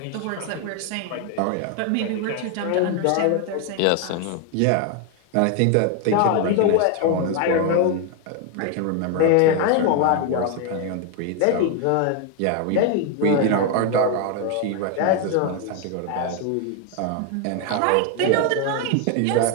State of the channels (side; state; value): both; different; correlation 0.01